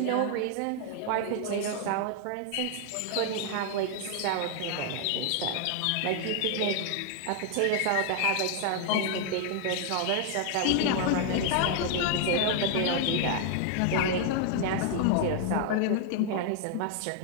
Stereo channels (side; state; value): both; different; correlation 0.00